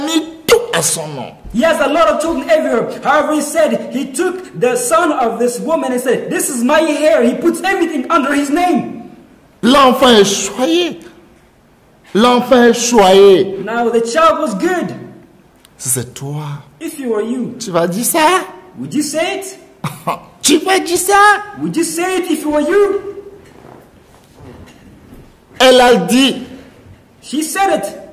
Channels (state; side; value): identical; both; correlation 1.00